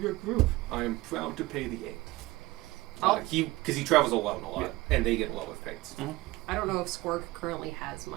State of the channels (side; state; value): left; quieter; 20.0 dB